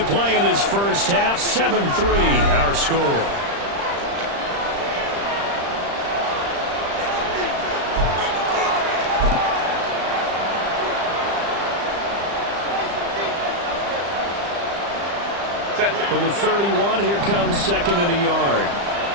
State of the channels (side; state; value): left; late; 35 ms